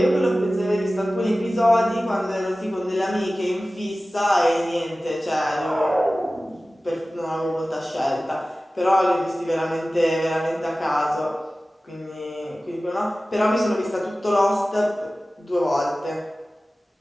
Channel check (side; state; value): both; normal; correlation 0.96